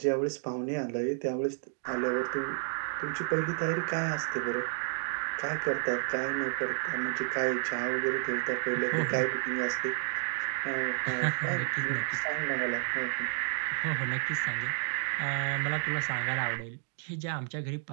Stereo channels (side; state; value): left; silent; 57 dB below the other